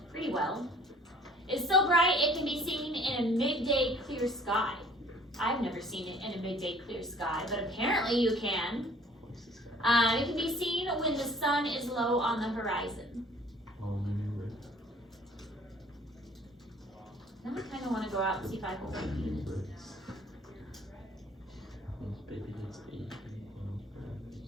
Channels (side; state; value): both; normal; correlation 0.54